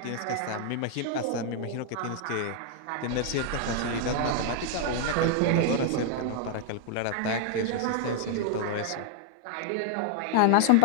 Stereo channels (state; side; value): different; both; correlation 0.00